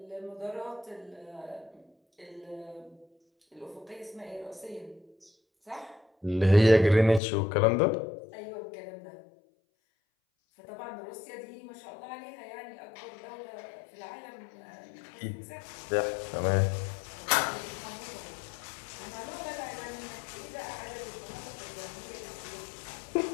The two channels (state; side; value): drops out; right; at 7.2 s